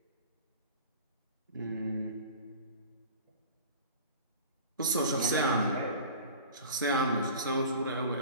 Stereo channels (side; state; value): both; inverted; correlation -0.39